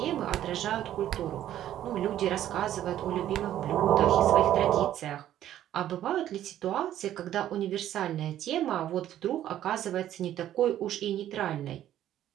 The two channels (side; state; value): left; quieter; 12.0 dB